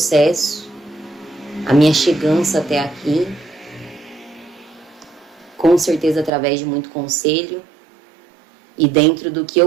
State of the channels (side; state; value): left; drops out; at 6.3 s